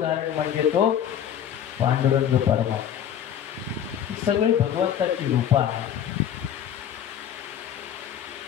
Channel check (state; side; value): quieter; right; 9.6 dB